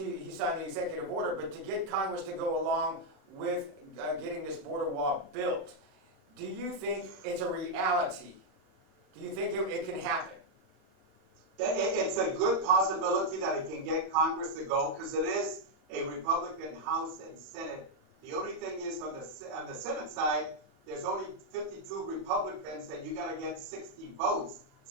signed the executive order, but to get Congress to go along with getting this border wall built. Do you think it's a reality? Do you think it can happen? It's a good possibility that it can get Congress to go because it is a Republican House and Senate. The only thing is on the Senate side, there's only 52 Republicans and you got to get 60 votes.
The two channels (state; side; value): late; left; 36 ms